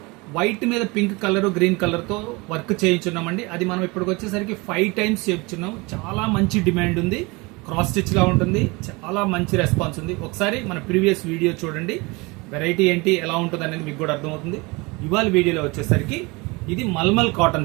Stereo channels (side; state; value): left; quieter; 25.6 dB